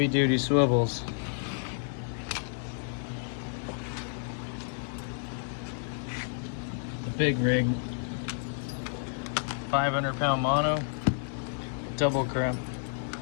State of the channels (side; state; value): right; silent; digital silence